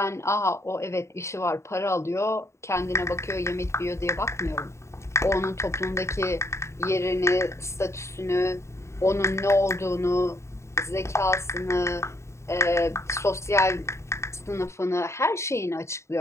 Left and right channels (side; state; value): right; late; 0.14 ms